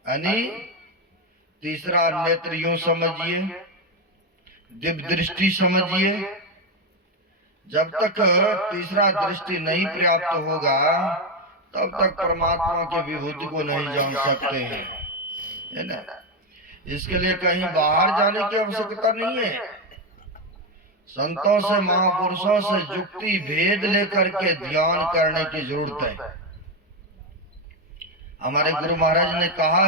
यानी तीसरा नेत्र यूं समझिए, दिव्य दृष्टि समझिए। जब तक तीसरा दृष्टि नहीं प्राप्त होगा तब तक परमात्मा की विभूति को नहीं जान सकते हैं, है ना। इसके लिए कहीं बाहर जाने की आवश्यकता नहीं है। संतों से महापुरुषों से जुक्ति भेद लेकर के ध्यान करने की जरूरत है। हमारे गुरु महाराज ने कहा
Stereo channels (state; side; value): normal; both; correlation 0.09